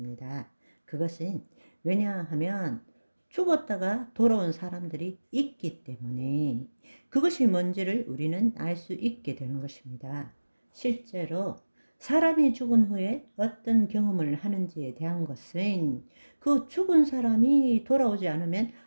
그것은 왜냐하면 죽었다가 돌아온 사람들이 있기 때문에 그것이 뭔지를 우리는 알 수 있게 되는 것입니다. 실제로 사람이 죽은 후에 어떤 경험을 하는지에 대한 것은 그 죽은 사람이 돌아오지 않으면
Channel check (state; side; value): inverted; both; correlation -1.00